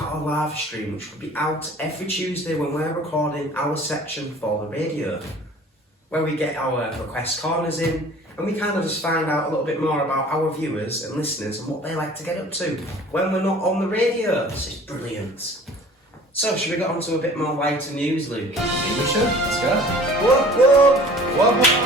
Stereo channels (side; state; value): both; normal; correlation 0.47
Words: our live stream, which will be out every Tuesday when we're recording our section for the radio, where we get our request corners in, and we kind of just find out a little bit more about our viewers and listeners and what they like to get up to when we're not on the radio. This is brilliant. So, should we get on to a bit more lighter news, Luke? Maybe we should. Let's go. Whoop.